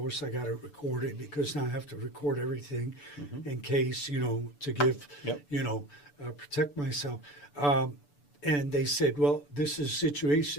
I got it recorded because now I have to record everything in case, you know, to give, you know, protect myself. And they said, well, this is a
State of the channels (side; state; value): right; late; 6.9 ms